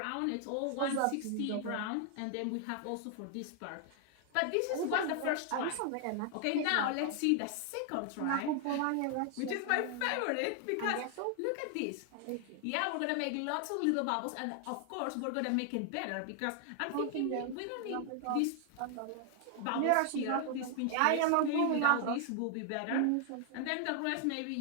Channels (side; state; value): both; different; correlation 0.00